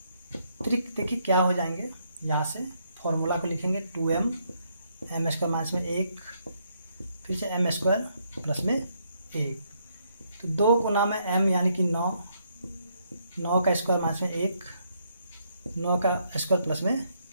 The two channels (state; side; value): inverted; both; correlation -0.73